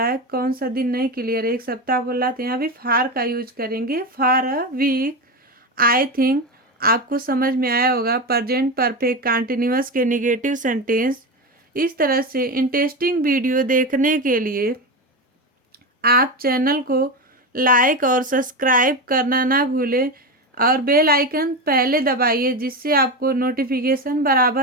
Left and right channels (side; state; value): both; normal; correlation 0.18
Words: है, कौन सा दिन नहीं क्लियर, एक सप्ताह बोला तो यहाँ भी फार का यूज करेंगे, फार अ वीक। आई थिंक आपको समझ में आया होगा प्रेजेंट परफेक्ट कंटिन्यूअस के नेगेटिव सेंटेंस। इस तरह से इंटरेस्टिंग वीडियो देखने के लिए आप चैनल को लाइक और सब्सक्राइब करना ना भूलें और बेल आइकन पहले दबाइए जिससे आपको नोटिफिकेशन